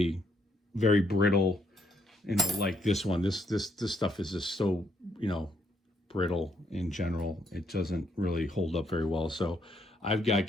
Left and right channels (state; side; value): normal; both; correlation 0.73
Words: very brittle. Like this one, this stuff is just so, brittle in general. It doesn't really hold up very well. So I've got